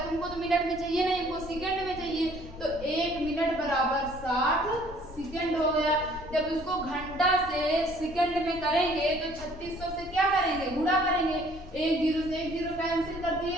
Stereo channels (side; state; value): left; noise; rumble, 15 dB below the sound